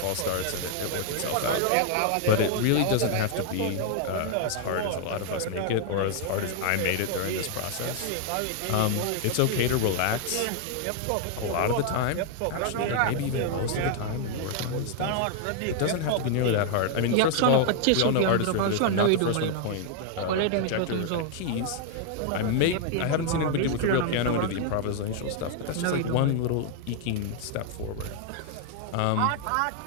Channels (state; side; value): different; both; correlation 0.00